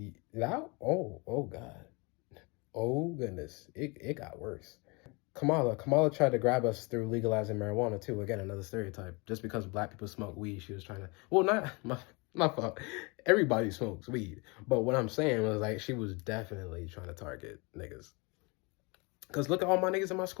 that, oh God. Oh goodness, it got worse. Kamala tried to grab us through legalizing marijuana too. Again, another stereotype. Just because black people smoke weed, she was trying to. Well, not my fault. Everybody smokes weed, but what I'm saying was like she was definitely trying to target niggas. Cause look at all my niggas in my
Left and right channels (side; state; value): right; quieter; 28.9 dB